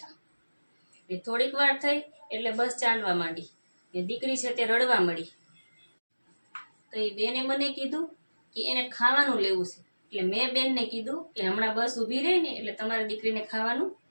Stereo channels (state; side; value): inverted; both; correlation -1.00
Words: એ થોડીક વાર થઈ એટલે બસ ચાલવા માંડી ને દીકરી છે તે રડવા મળી. તો એ બેને મને કીધું કે એને ખાવાનું લેવું છે. એટલે મેં બેનને કીધું કે હમણાં બસ ઊભી રહી ને એટલે તમારી દીકરીને ખાવાનું